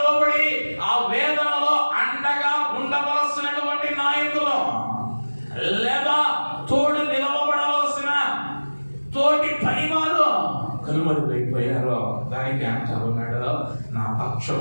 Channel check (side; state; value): both; inverted; correlation -1.00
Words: ఆ వేదనలో అండగా ఉండవలసినటువంటి నాయకులు లేదా తోడు నిలవబడవలసిన తోటి పనివారు కనుమరుగైపోయారు. దానికి అంటా ఉన్నాడు, నా